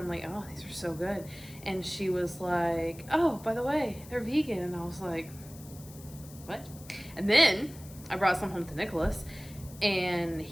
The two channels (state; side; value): noise; left; hiss, 19 dB below the sound